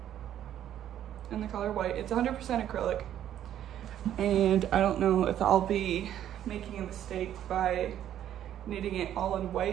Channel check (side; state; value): left; quieter; 11.0 dB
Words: in the color white. It's 100% acrylic, and I don't know if I'll be making a mistake by knitting it all in